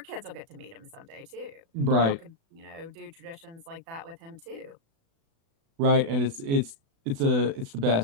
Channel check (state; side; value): late; left; 36 ms